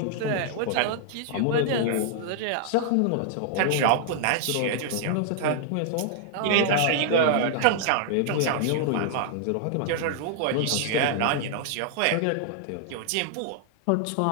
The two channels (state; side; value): different; both; correlation -0.01